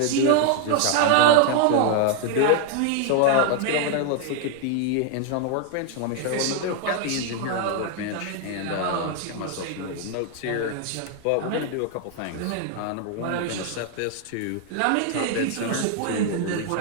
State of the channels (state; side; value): different; both; correlation 0.00